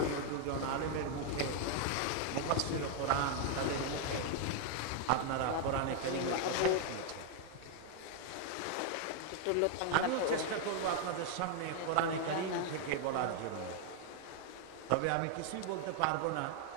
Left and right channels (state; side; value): different; both; correlation 0.00